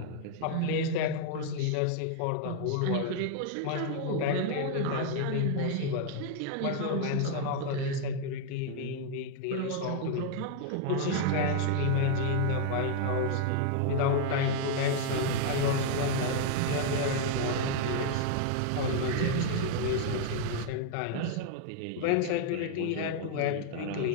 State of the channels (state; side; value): different; both; correlation 0.00